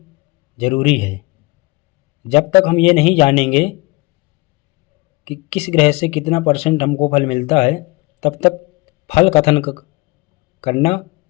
ज़रूरी है। जब तक हम ये नहीं जानेंगे कि किस ग्रह से कितना % हमको फल मिलता है, तब तक फल कथन करना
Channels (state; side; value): quieter; right; 24.0 dB